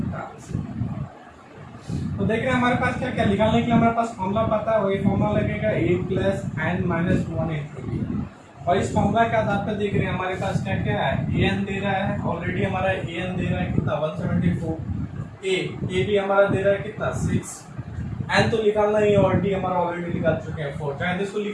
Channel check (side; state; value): both; identical; correlation 1.00